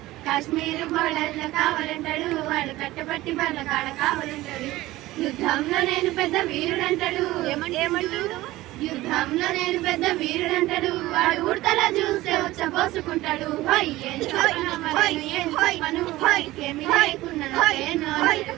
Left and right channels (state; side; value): quieter; left; 17.5 dB